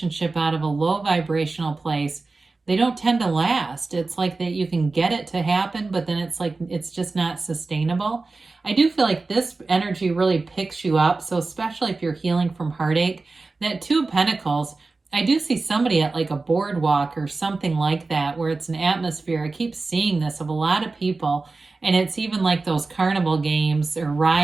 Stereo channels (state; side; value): quieter; left; 3.7 dB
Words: out of a low vibrational place, they don't tend to last. It's like that you can get it to happen, but then it's like it's just not sustainable. I do feel like this energy really picks you up. So especially if you're healing from heartache, that 2 of Pentacles, I do see somebody at like a boardwalk or something like that where it's an atmosphere. I keep seeing this of a lot of people. And it's even like those carnival games or